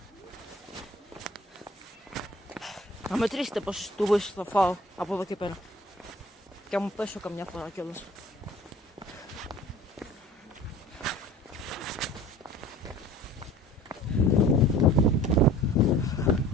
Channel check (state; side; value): normal; both; correlation 0.46